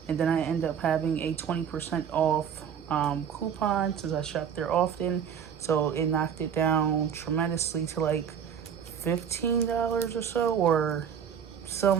And then I end up having a 20% off coupon since I shop there often. So it knocked it down tremendously to like $15 or so, or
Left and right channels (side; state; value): left; quieter; 8.0 dB